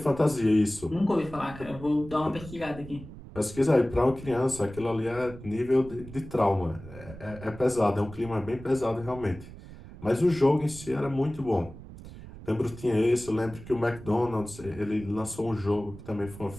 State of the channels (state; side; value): noise; right; rumble, 15 dB below the sound